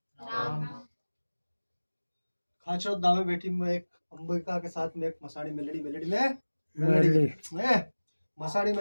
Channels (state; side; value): inverted; both; correlation -1.00